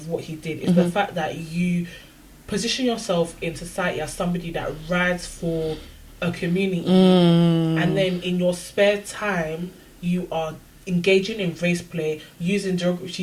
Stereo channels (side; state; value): both; identical; correlation 1.00